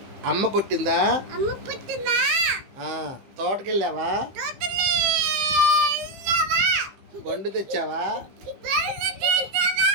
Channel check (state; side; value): late; left; 15 ms